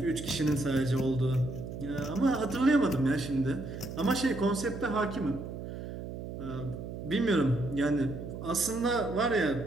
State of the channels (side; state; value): right; noise; hum, 8 dB below the sound